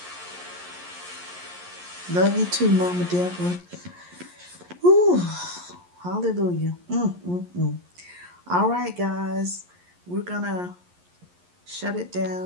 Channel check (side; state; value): left; late; 11 ms